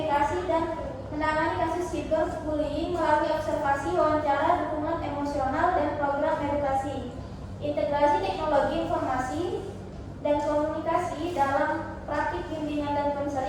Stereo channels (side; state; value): both; identical; correlation 1.00